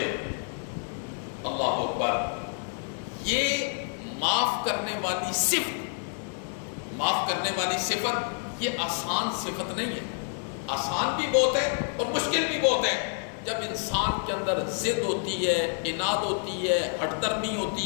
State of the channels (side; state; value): right; silent; digital silence